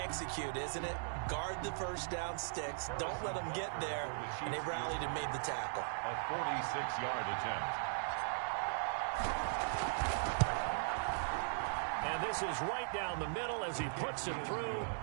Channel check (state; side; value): silent; left; 52 dB below the other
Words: isn't it? Guard the first down sticks. Don't let them get there. And they rallied and made the tackle. A 46-yard attempt. And this is right down the middle as he puts it through.